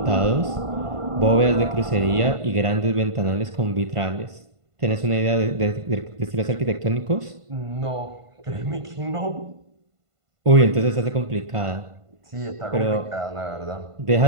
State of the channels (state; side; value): late; left; 1.5 ms